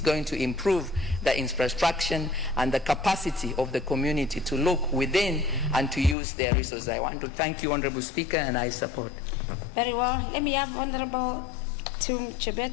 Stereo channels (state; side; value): drops out; right; at 6.2 s